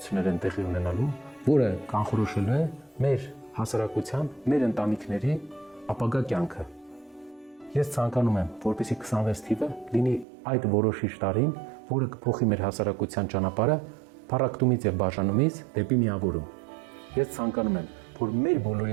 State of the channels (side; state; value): left; drops out; at 10.2 s